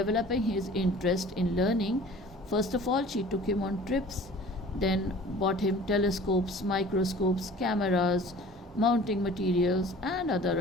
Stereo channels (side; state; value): both; normal; correlation 0.46